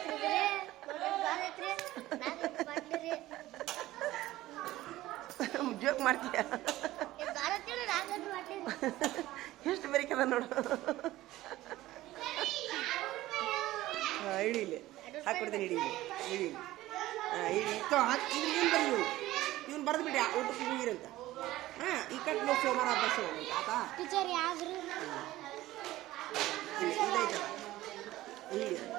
ನೋಡ್ರಿ ದ್ವಾರದತ್ರಿ 4 ಲೀಟರ್ ಬಾಟ್ಲಿ ರೀ. ಜೋಕ್ ಮಾಡ್ತೀಯ? ದ್ವಾರತ್ರಿ 4 ಲೀಟರ್ ಬಾಟ್ಲಿ ಎಷ್ಟು ಬೇರಿಕದ ನೋಡು. ಇಡಿ ಇಲ್ಲಿ ಹಾಕ್ಬಿಡ್ತೀನಿ. ಇಡಿ ಇಡಿ ಏನು ಬರೀ ಇವನು ಬರೆದು ಬಿಡಿ ಊಟಕ್ಕೆ ನೀರಂತ. ಈ ಕಟ್ ನೋಡಿ ಸೋಮವಾರ ಅಭ್ಯಾಸ ಆತಾ ಟೀಚರ್ ಯಾವ್ದು ಇದೈತದ.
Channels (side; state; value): left; quieter; 16.3 dB